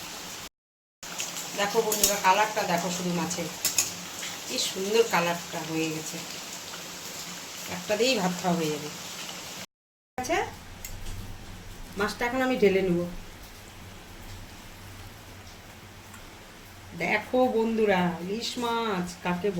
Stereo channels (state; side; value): identical; both; correlation 1.00